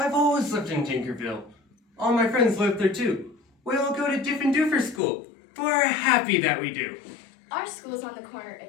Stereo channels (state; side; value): drops out; right; at 5.0 s